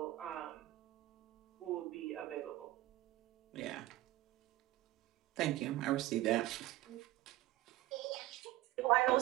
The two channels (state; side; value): quieter; left; 16.3 dB